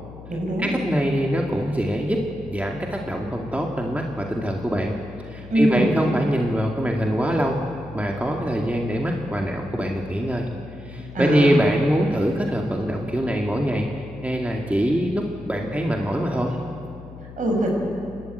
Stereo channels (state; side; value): noise; left; hum, 15 dB below the sound